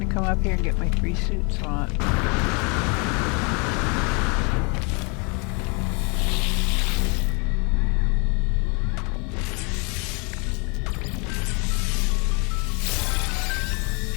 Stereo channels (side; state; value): right; quieter; 32.8 dB